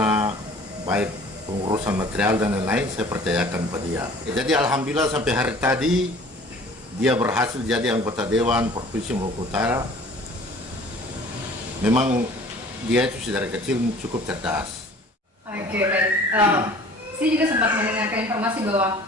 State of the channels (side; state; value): both; normal; correlation 0.49